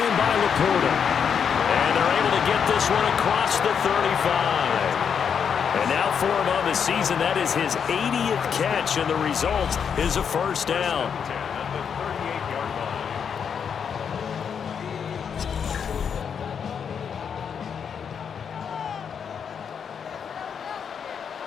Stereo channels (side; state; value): right; quieter; 7.2 dB